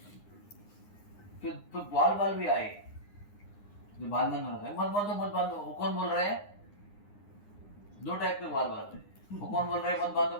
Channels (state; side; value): late; right; 9.8 ms